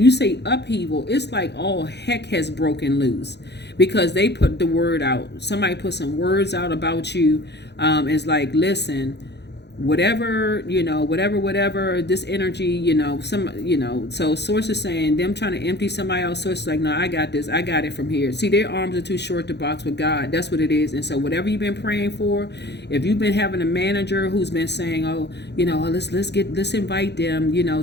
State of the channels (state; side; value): late; right; 0.50 ms